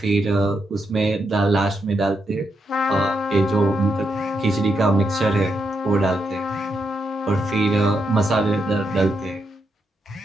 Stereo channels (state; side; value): normal; both; correlation 0.82